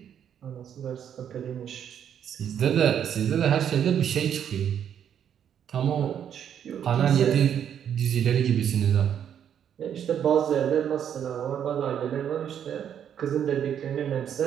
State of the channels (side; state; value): left; quieter; 9.0 dB